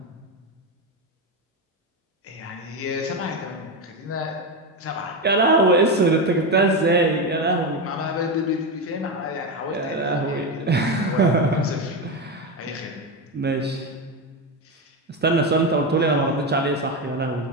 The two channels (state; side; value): normal; both; correlation 0.14